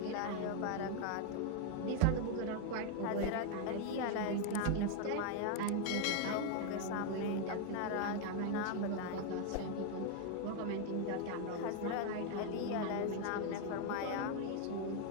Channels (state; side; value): different; both; correlation 0.01